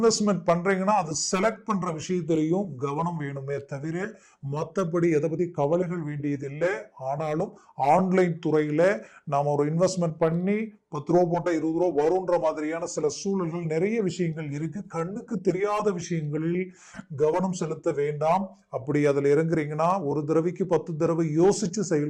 பண்றீங்கன்னா அது செலக்ட் பண்ற விஷயத்திலையும் கவனம் வேணுமே தவிர மற்றபடி எதை பத்தி கவலைகள் வேண்டியதில்லை. ஆனாலும் ஆன்லைன் துறையில நாம ஒரு இன்வெஸ்ட்மெண்ட் பண்ணி 10 ரூபா போட்டா 20 ரூபா வரும்ன்ற மாதிரியான சில சூழல்கள் நிறைய விஷயங்கள் இருக்கு. கண்ணுக்கு தெரியாத விஷயங்களில் கவனம் செலுத்த வேண்டாம். அப்படி அதுல இறங்குறீங்கன்னா ஒரு தடவைக்கு 10 தடவை யோசிச்சு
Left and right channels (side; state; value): both; identical; correlation 1.00